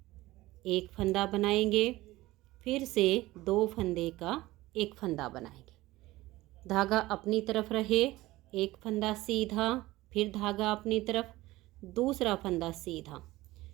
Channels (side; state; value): left; quieter; 18.2 dB